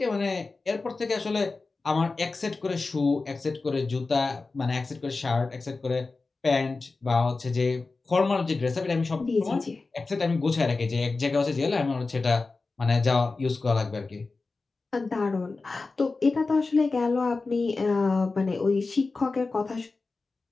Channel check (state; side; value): quieter; right; 3.8 dB